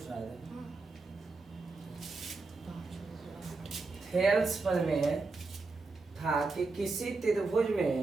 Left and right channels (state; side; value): quieter; left; 3.8 dB